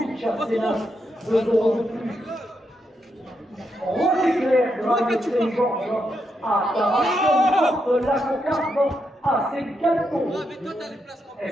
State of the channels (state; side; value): normal; both; correlation 0.82